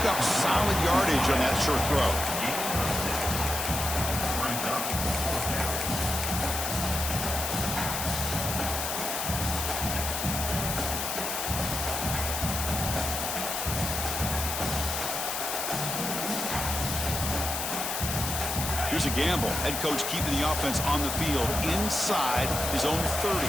up solid yardage on that short throw. Here's a gamble. Head coach keeping the offense on the field inside his own 30.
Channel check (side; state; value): left; noise; hiss, 2 dB below the sound